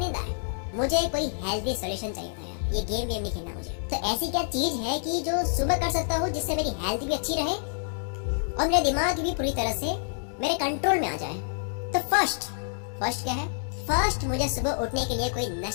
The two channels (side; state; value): right; silent; digital silence